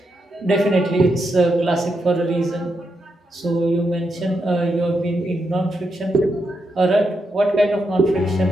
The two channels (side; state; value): both; normal; correlation 0.83